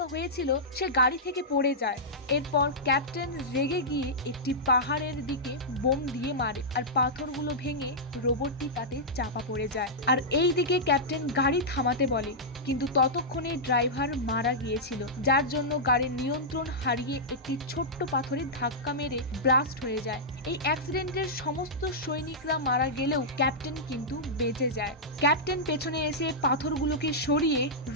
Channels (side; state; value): both; normal; correlation -0.11